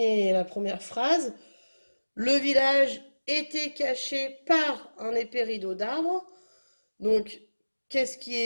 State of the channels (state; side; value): inverted; both; correlation -1.00